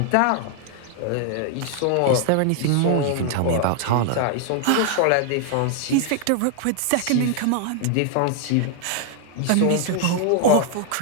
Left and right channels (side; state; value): both; different; correlation 0.00